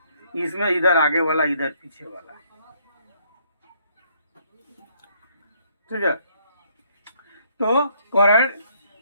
इसमें इधर आगे वाला, इधर पीछे वाला, ठीक है। तो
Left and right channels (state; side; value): inverted; both; correlation -0.68